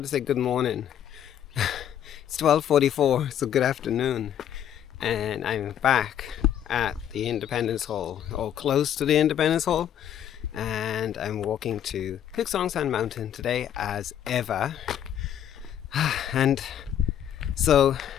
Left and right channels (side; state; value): right; quieter; 10.1 dB